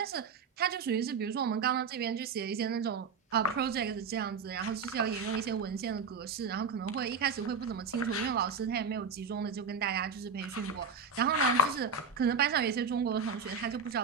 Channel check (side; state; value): left; quieter; 5.4 dB